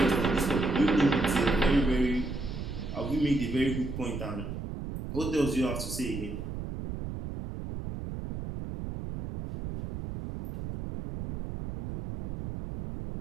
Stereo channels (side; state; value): right; noise; rumble, 7 dB below the sound